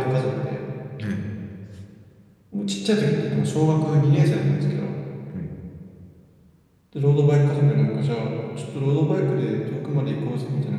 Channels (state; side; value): identical; both; correlation 1.00